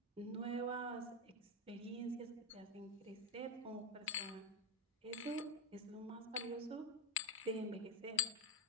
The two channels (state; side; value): normal; both; correlation 0.12